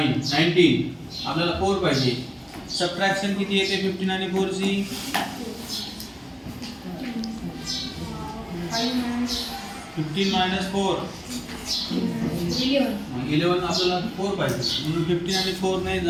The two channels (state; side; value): identical; both; correlation 1.00